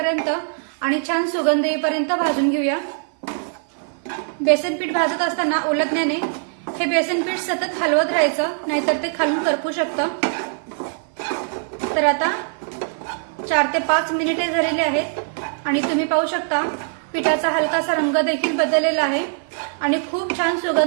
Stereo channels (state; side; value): silent; left; 56 dB below the other